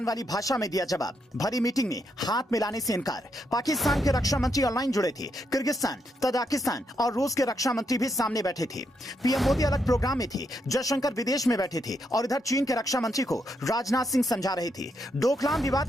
वाली भाषा में दिया जवाब। भरी मीटिंग में हाथ मिलाने से इनकार। पाकिस्तान के रक्षा मंत्री ऑनलाइन जुड़े थे। किर्गिस्तान, तजाकिस्तान और रूस के रक्षा मंत्री भी सामने बैठे थे। पीएम मोदी अलग प्रोग्राम में थे, जयशंकर विदेश में बैठे थे और इधर चीन के रक्षा मंत्री को राजनाथ सिंह समझा रहे थे। डोकलाम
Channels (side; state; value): both; normal; correlation 0.80